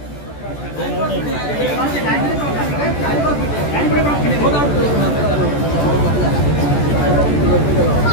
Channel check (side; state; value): right; late; 14 ms